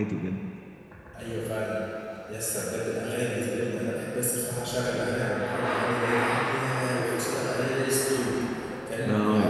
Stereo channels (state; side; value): identical; both; correlation 1.00